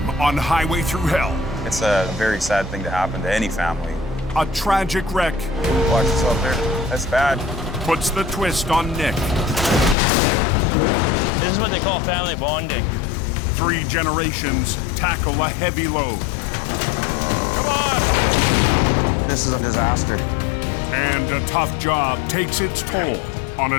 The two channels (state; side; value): drops out; right; at 10.0 s